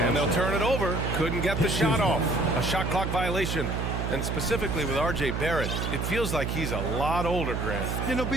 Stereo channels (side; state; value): right; noise; hum, 2 dB below the sound